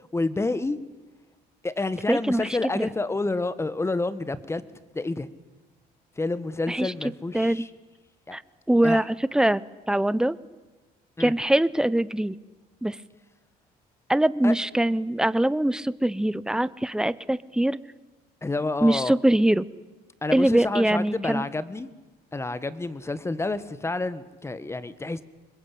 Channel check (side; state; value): both; normal; correlation 0.94